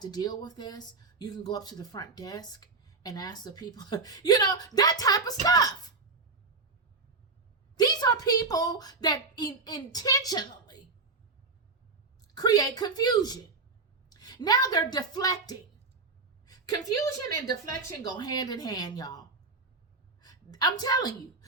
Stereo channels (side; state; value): left; quieter; 4.0 dB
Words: deal with this. You can go up to the front desk and ask the people, that type of stuff. These are people that intentionally create confusion. Now they're deflecting. Confusion and deflection go hand in hand, y'all. I'm telling you.